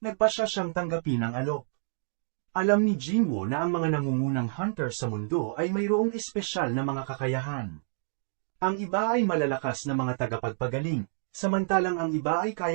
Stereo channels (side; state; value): left; silent; digital silence